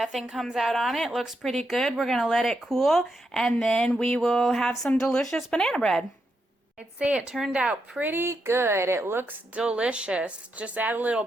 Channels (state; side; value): normal; both; correlation 0.83